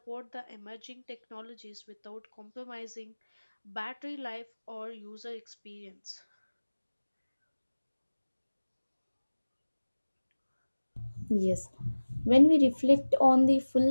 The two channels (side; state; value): both; inverted; correlation -1.00